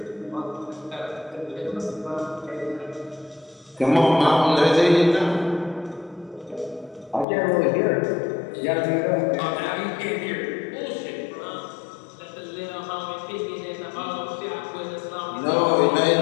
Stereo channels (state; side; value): drops out; right; at 7.2 s